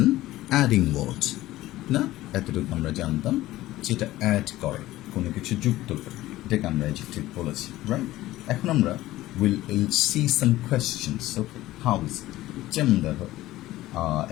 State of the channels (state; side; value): quieter; right; 16.2 dB